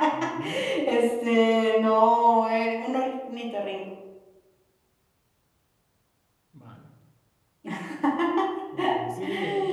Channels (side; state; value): both; identical; correlation 1.00